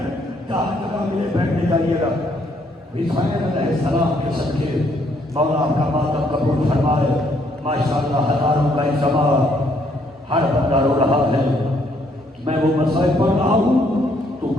جہاں جگہ ملے بیٹھنے جائیے گا۔ حسین علیہ السلام کے صدقے مولا آپ کا ماتم قبول فرمائے۔ ماشاءاللہ ہزاروں کا اجتماع، ہر بندہ رو رہا ہے۔ میں وہ مسائل پڑھ رہا ہوں تو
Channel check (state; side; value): normal; both; correlation 0.69